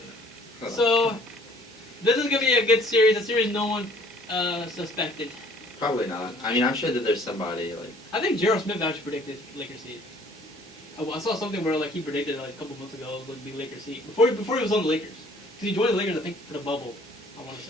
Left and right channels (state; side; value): normal; both; correlation 0.56